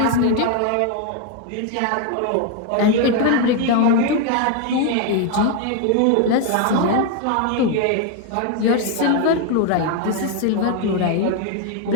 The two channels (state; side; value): different; both; correlation 0.01